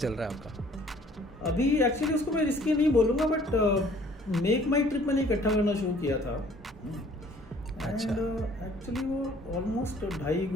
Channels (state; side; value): normal; both; correlation 0.56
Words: रहा है आपका? अभी एक्चुअली उसको मैं रिस्की नहीं बोलूँगा, बट मेक माई ट्रिप मैंने इकट्ठा करना शुरू किया था। अच्छा। एक्चुअली वो ऑलमोस्ट 2.5